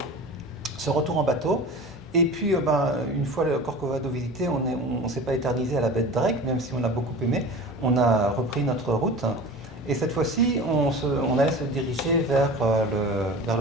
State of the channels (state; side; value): normal; both; correlation 0.35